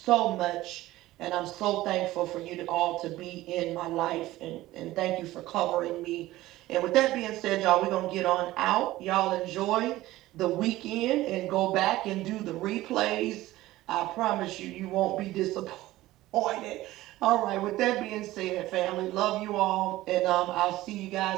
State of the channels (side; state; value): left; quieter; 16.7 dB